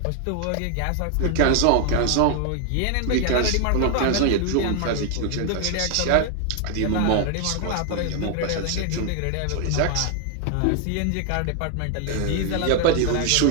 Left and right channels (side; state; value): both; different; correlation 0.00